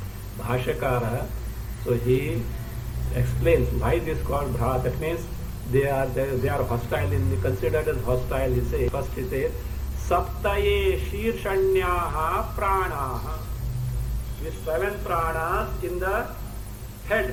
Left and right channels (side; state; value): both; identical; correlation 1.00